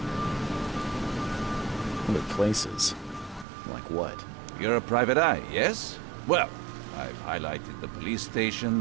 Other places? Like what? You're a private eye, yes? Well, I've highlighted the police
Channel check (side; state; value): left; drops out; at 3.5 s